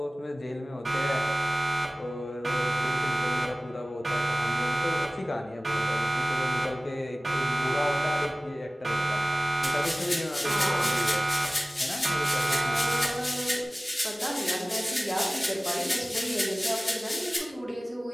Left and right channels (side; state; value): both; normal; correlation 0.98